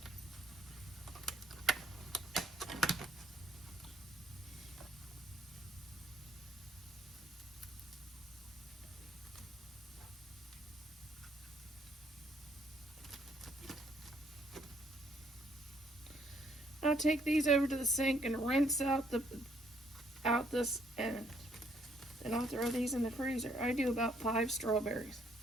I'll take these over to the sink and rinse out this, and then I'll throw these in the freezer. I do about 5 strawberries.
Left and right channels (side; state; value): both; normal; correlation 0.68